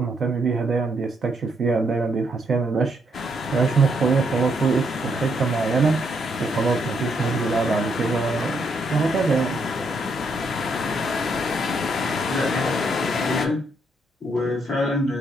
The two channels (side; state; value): both; normal; correlation 0.75